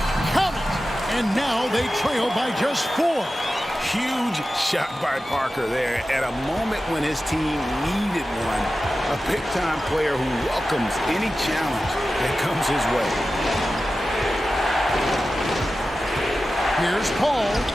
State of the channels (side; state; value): both; normal; correlation 0.94